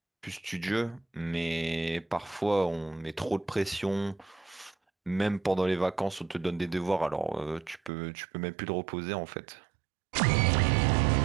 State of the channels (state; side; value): drops out; left; at 7.9 s